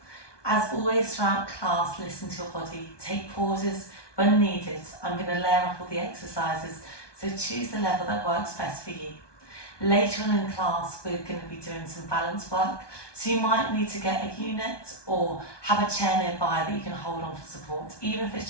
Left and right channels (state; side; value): late; right; 1.2 ms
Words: As always throughout class, listen to your body, take pauses when needed. I'm going to layer up all the exercises, so choose the level that works best for you. Later on in class, we're going to be doing some balance work, so you might need to get a unit or have a chair nearby that you can hold on for support, even if it's